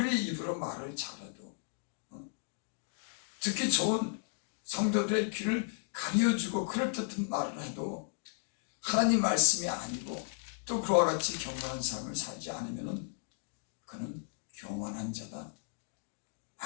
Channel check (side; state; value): right; silent; digital silence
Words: 입으로 말을 잘해도 듣기 좋은 성도들의 귀를 가려주고 그럴듯한 말을 해도 하나님 말씀이 아니고 또 그와 같이 경건한 삶을 살지 않으면 그는 교만한 자다.